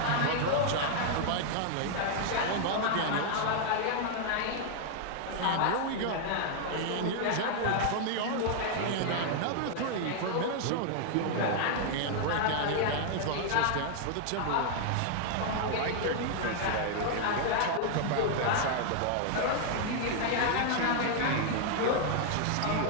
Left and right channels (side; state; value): both; different; correlation 0.00